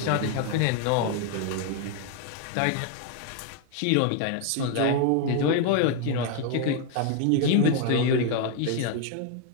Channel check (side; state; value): both; different; correlation 0.00